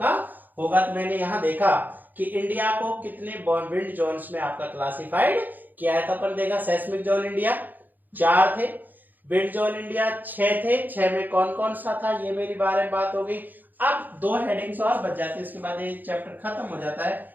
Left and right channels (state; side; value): late; left; 0.088 ms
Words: होगा। तो मैंने यहाँ देखा कि इंडिया को कितने विंड जोन्स में आपका क्लासिफाइड किया है। तो अपन देखा सेस्मिक जोन इंडिया 4 थे, विंड जोन इंडिया 6 थे, 6 में कौन कौन सा था ये मेरी बारे में बात हो गई। अब 2 हेडिंग्स और बच जाती है, इसके बाद ये चैप्टर खत्म हो जाता है,